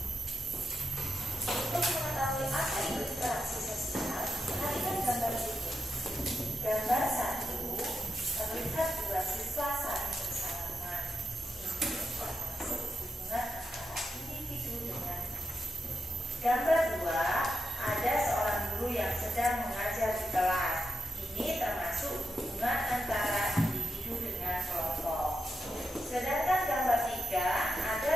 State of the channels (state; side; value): normal; both; correlation 0.86